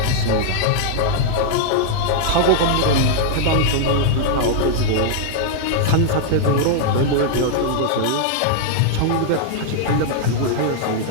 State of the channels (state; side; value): different; both; correlation -0.01